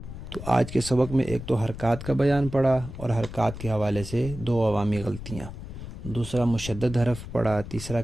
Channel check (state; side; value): noise; left; rumble, 11 dB below the sound